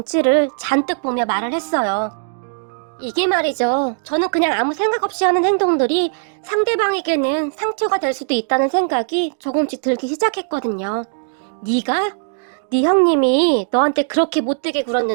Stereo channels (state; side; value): silent; left; digital silence